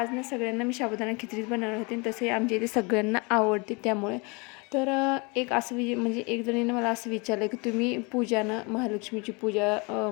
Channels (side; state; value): right; quieter; 29.5 dB